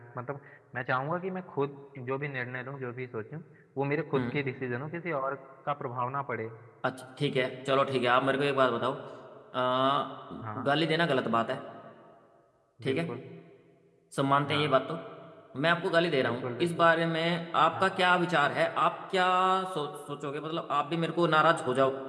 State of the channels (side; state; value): both; identical; correlation 1.00